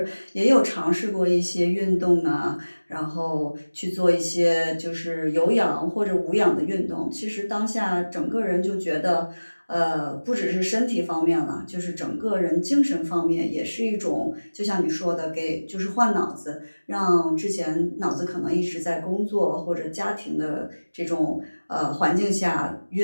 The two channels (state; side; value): inverted; both; correlation -1.00